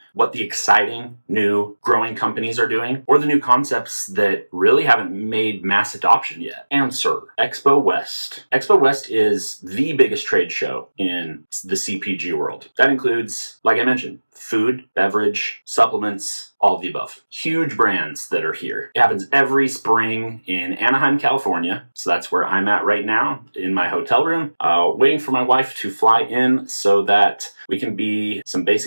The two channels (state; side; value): inverted; both; correlation -1.00